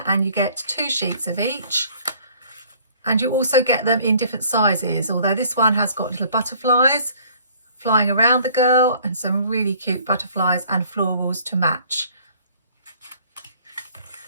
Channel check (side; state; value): both; inverted; correlation -0.56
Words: and you get 2 sheets of each. And you also get them in different sizes, although this one has got little butterflies flying around the girl and some really cute butterflies and florals to match.